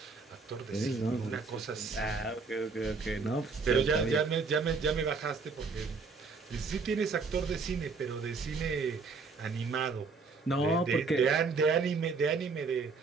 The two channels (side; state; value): left; quieter; 4.5 dB